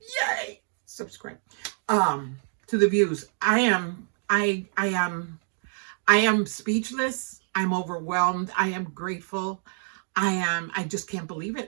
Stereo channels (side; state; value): left; silent; digital silence